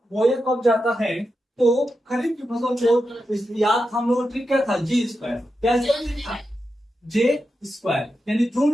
बोया कब जाता है, तो खरीफ की फसल को याद हम लोग ट्रिक क्या था, जी स्क्वायर। क्या था, जे स्क्वायर, यानी जून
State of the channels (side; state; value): both; normal; correlation 0.89